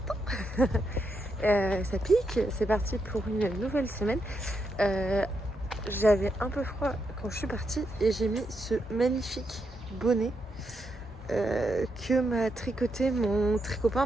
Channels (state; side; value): normal; both; correlation 0.82